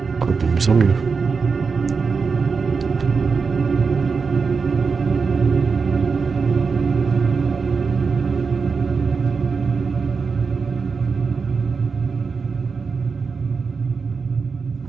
De mieux en mieux.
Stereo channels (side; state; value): left; quieter; 5.1 dB